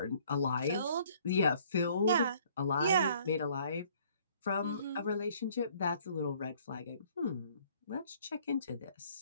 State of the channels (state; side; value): inverted; both; correlation -0.59